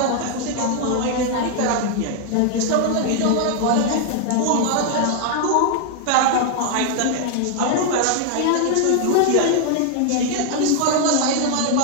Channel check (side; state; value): both; different; correlation 0.00